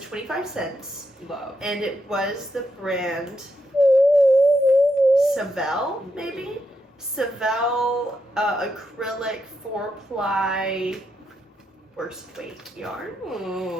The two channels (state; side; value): normal; both; correlation 0.82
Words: 25 cents. Love. And it was the brand Savell, maybe? Savell acrylic 4-ply worst weight yarn.